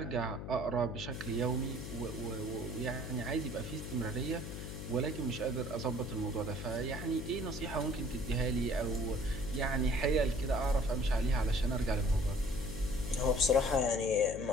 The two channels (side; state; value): left; noise; hum, 7 dB below the sound